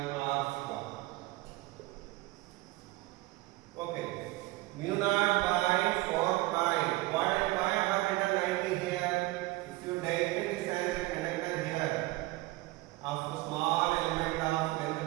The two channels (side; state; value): left; quieter; 20.1 dB